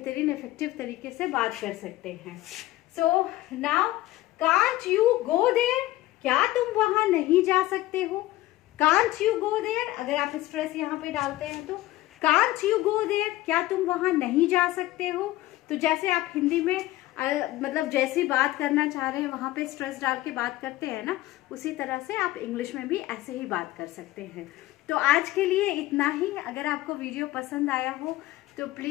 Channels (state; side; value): quieter; right; 16.8 dB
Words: इफेक्टिव तरीके से बात कर सकते हैं। Now can't you go there, क्या तुम वहां नहीं जा सकते हो। कांट यू गो देयर, अगर आप स्ट्रेस यहाँ पे डालते हैं तो कांट यू गो देयर, क्या तुम वहां नहीं जा सकते हो। तो जैसे आप हिंदी में मतलब जैसी बात करना चाह रहे हैं वहां पे स्ट्रेस डाल के बात करते हैं ना, उसी तरह से आप इंग्लिश में भी ऐसे ही बात कर सकते हैं। तो आज के लिए इतना ही। अगर आपको वीडियो पसंद आया हो तो